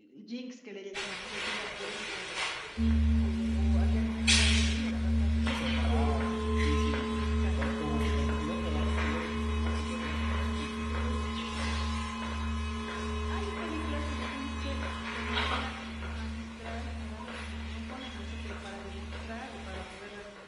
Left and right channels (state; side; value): identical; both; correlation 1.00